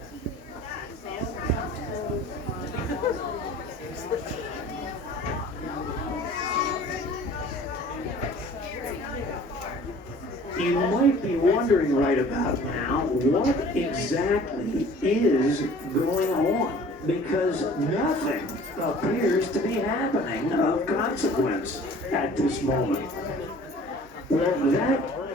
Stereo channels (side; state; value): both; normal; correlation 0.48